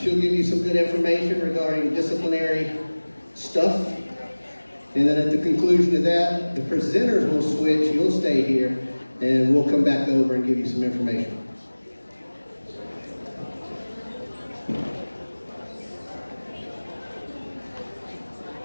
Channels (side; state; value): both; inverted; correlation -1.00